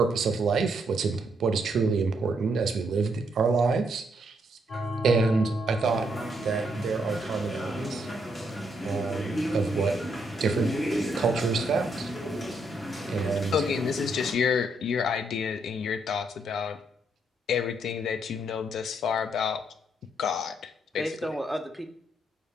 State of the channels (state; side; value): normal; both; correlation 0.75